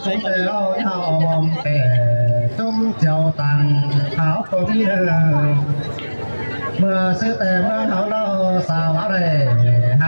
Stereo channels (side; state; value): both; inverted; correlation -1.00